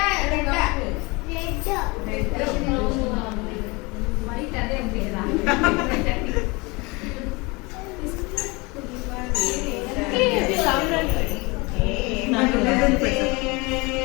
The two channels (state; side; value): quieter; right; 26.0 dB